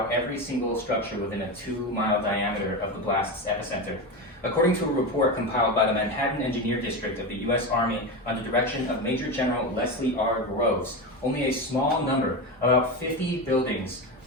every single structure within a 2-mile diameter of the blast's epicenter. According to a report compiled by the Manhattan Engineer District of the U.S. Army under direction of Major General Leslie R. Groves, only a small number, about 50 buildings,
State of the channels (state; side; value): normal; both; correlation 0.19